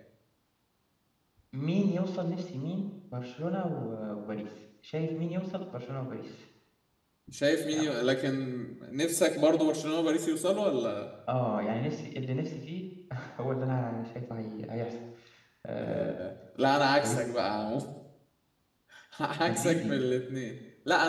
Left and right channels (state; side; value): identical; both; correlation 1.00